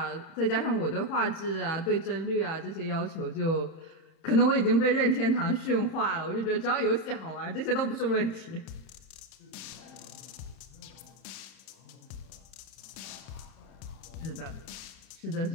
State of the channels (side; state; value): right; late; 31 ms